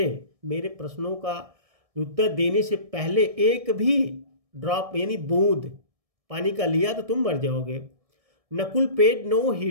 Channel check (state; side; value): late; left; 1.7 ms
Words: मेरे प्रश्नों का उत्तर देने से पहले एक भी ड्रॉप यानी बूंद पानी का लिया तो तुम मर जाओगे। Nakul paid no